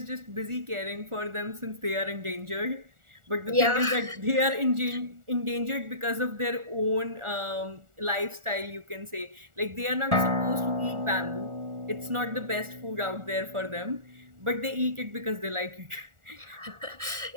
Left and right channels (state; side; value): late; left; 1.4 ms